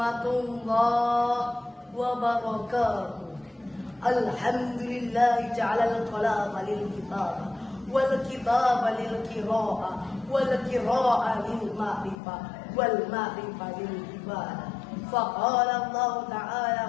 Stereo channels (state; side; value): drops out; right; at 12.2 s